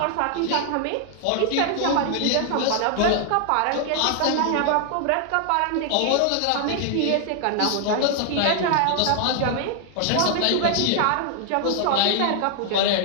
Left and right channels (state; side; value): different; both; correlation 0.00